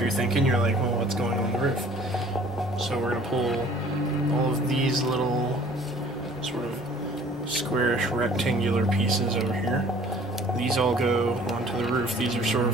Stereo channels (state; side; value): normal; both; correlation 0.52